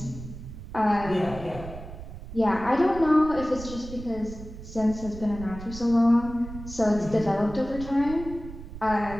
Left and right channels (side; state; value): right; noise; rumble, 12 dB below the sound